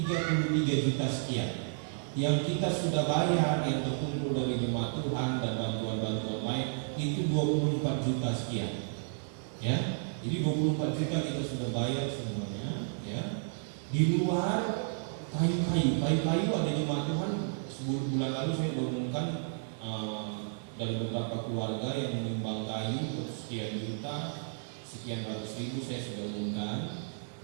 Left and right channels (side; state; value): left; silent; 56 dB below the other